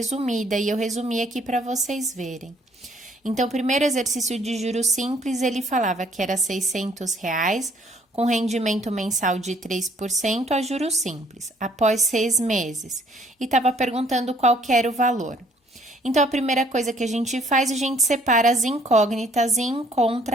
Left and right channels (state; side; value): normal; both; correlation 0.61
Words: e eu resumi aqui para vocês verem. Então, o primeiro exercício de juros simples, ele falava que era R$ 600, com rendimento mensal de 3% a juros simples, após 6 meses, e estava perguntando qual que era o valor. Então, a primeira coisa que a gente faz, a gente separa as incógnitas e